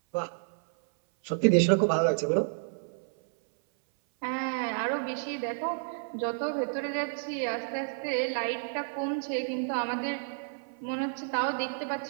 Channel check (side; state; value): left; silent; 58 dB below the other